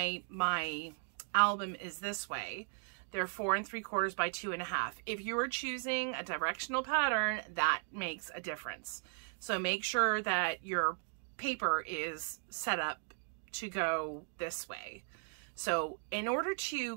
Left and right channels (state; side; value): silent; left; 53 dB below the other